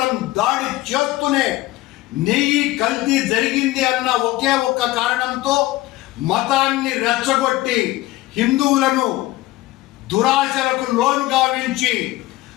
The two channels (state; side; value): quieter; right; 17.9 dB